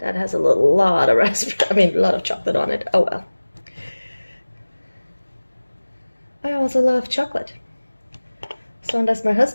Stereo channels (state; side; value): inverted; both; correlation -1.00